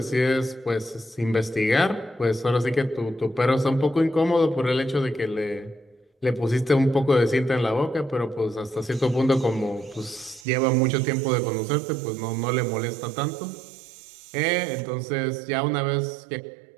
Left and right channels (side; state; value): left; drops out; at 10.5 s